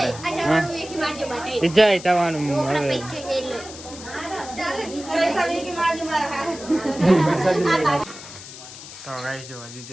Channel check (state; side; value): noise; left; hiss, 14 dB below the sound